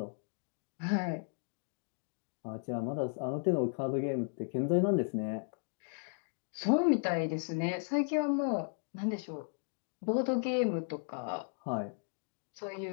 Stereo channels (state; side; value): silent; right; digital silence